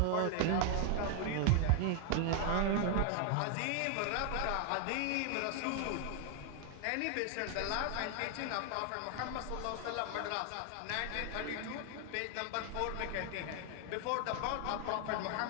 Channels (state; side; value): different; both; correlation 0.00